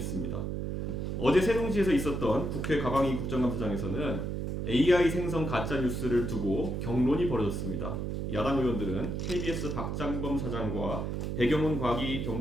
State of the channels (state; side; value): noise; right; hum, 2 dB below the sound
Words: 어제 세종시에서 있었던 국회 과방위 국정감사장에서는 AI 생성 가짜 뉴스를 두고 경론이 벌어졌습니다. 야당 의원들은 KBS 박장범 사장과 배경훈